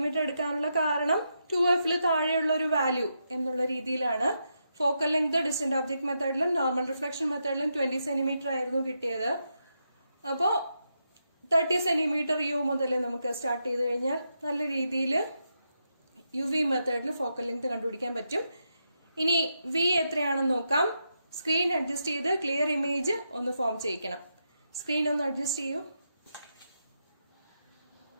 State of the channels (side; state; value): both; inverted; correlation -0.83